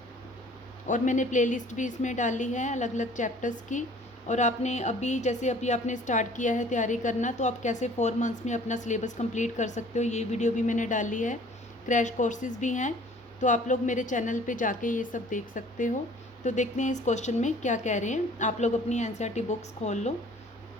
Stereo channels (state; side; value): normal; both; correlation 0.52